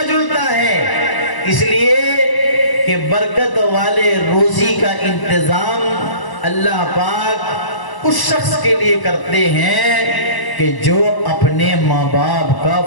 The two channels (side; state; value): right; late; 1.0 ms